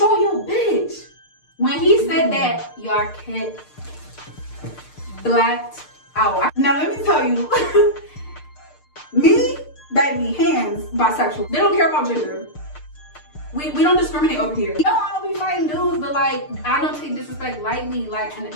your bitch. When he said that, y'all kid blacked out. Now let me tell you, me, baby, hands, bisexual. They don't care about gender. We don't discriminate over here. You know, I don't be fighting dudes, but like, I don't take disrespect lightly, like, and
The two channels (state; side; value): late; right; 6.6 ms